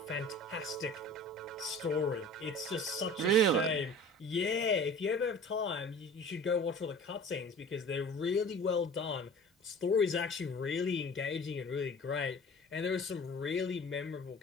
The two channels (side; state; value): both; normal; correlation 0.42